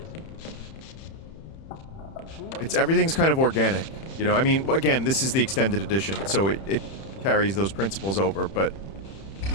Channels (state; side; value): late; right; 31 ms